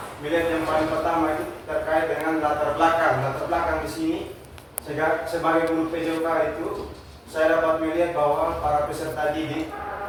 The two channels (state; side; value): identical; both; correlation 1.00